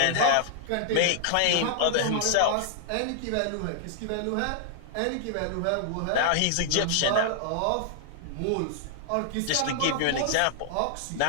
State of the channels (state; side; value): different; both; correlation -0.01